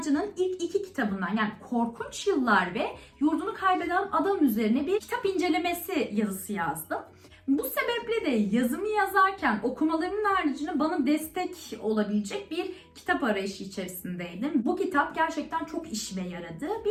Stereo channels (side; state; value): both; identical; correlation 1.00